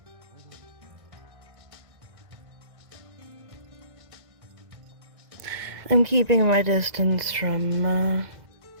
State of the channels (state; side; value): late; left; 1.9 ms